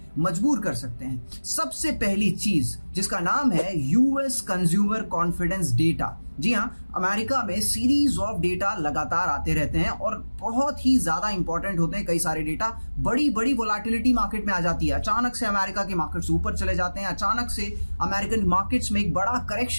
मजबूर कर सकते हैं। सबसे पहली चीज जिसका नाम है यूएस कंज्यूमर कॉन्फिडेंस डेटा। जी हाँ, अमेरिका में सीरीज ऑफ डेटा लगातार आते रहते हैं और बहुत ही ज्यादा इंपॉर्टेंट होते हैं। कई सारे डेटा, बड़ी बड़ी वोलेटिलिटी मार्केट में आ जाती है। अचानक से अमेरिका के मार्केट्स ऊपर चले जाते हैं, अचानक से अमेरिकन मार्केट्स में एक बड़ा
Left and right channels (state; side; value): inverted; both; correlation -1.00